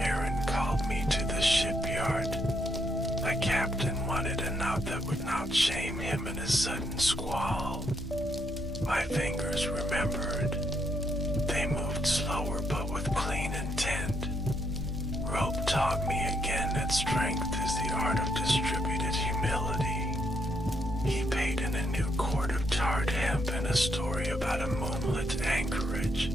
called me to the shipyard. A captain wanted a note that would not shame him in a sudden squall. My fingers remembered. They moved slower but with clean intent. Rope taught me again that strength is the art of distributed humility. He paid in a new cord of tarred hemp and a story about a moonlit anchorage.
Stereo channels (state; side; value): normal; both; correlation 0.75